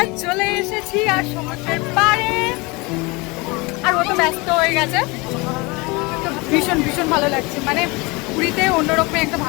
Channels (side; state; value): right; quieter; 25.7 dB